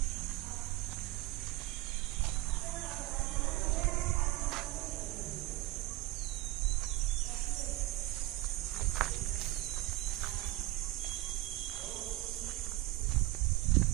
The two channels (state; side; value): quieter; left; 18.8 dB